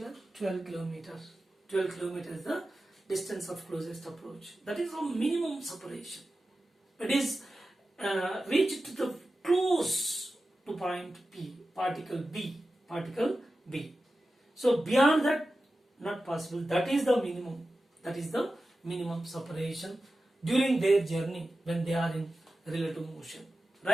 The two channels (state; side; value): normal; both; correlation 0.93